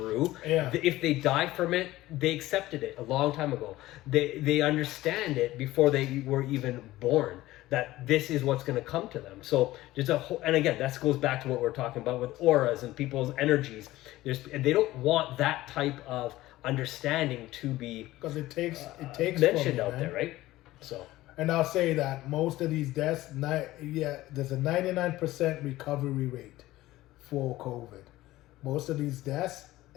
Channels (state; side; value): quieter; right; 16.8 dB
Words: Yeah. If they die from it, they accepted it a long time ago. They understand it before they were even born. that this is what's going to come to them. So there's a whole, and again, that goes back to what we're talking about with auras and people's energies. And they don't want that type of understanding to be because it takes mentioned out man. there, right? So, and I'll say that most of these deaths, there's a 99% recovery rate for COVID. Most of these deaths,